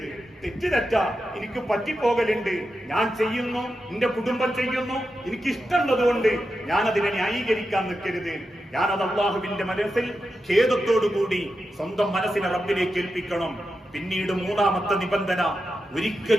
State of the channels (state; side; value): normal; both; correlation 0.89